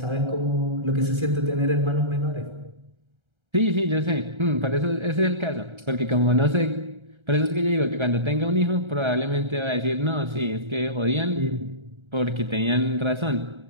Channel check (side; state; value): left; late; 1.3 ms